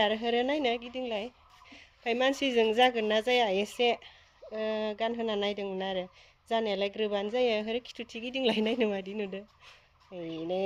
होरो नायनो गिदिंलाय ओमफ्राय मानसिजों जागोन ना जाया एसे गानहोना नायदोंमोन आरो जानायालाय ग्रोबानो जायो होरो खिथुथि गिदिंलाय नायनो मादि नुदो नै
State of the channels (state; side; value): identical; both; correlation 1.00